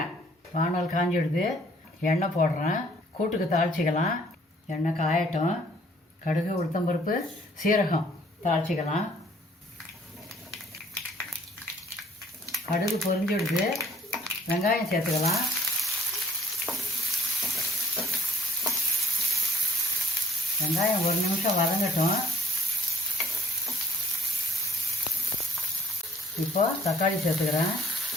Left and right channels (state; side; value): normal; both; correlation 0.61